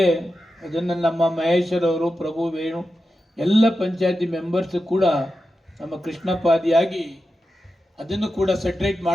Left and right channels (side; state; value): both; normal; correlation 0.90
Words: ಅದನ್ನು ನಮ್ಮ ಮಹೇಶ್ವರವರು, ಪ್ರಭು, ವೇಣು ಎಲ್ಲ ಪಂಚಾಯತಿ ಮೆಂಬರ್ಸ್ ಕೂಡ ನಮ್ಮ ಕೃಷ್ಣಪಾದಿಯಾಗಿ ಅದನ್ನು ಕೂಡ ಸೆಟ್ರೇಟ್